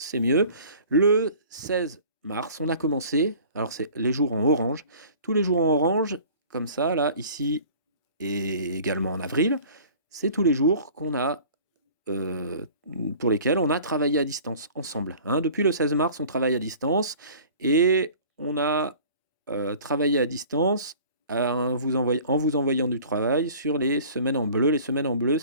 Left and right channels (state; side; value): inverted; both; correlation -0.47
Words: mieux. Le 16 mars, on a commencé. Alors, c'est les jours en orange. Tous les jours en orange, comme ça, là, ici, et également en avril, c'est tous les jours qu'on a, euh, pour lesquels on a travaillé à distance ensemble. Hein. Depuis le 16 mars, on travaille à distance et on a travaillé à distance en vous envoyant du travail sur les semaines en bleu. Les semaines en bleu,